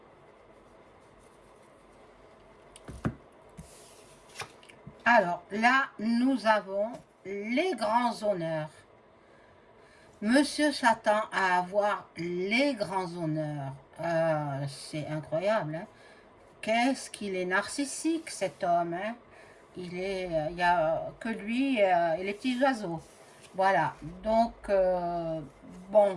Alors, là, nous avons les grands honneurs. Monsieur s'attend à avoir les grands honneurs. C'est incroyable. Hein? Qu'est-ce qu'il est narcissique, cet homme. Hein? Il n'y a que lui et les petits oiseaux. Voilà. Donc,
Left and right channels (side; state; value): both; identical; correlation 1.00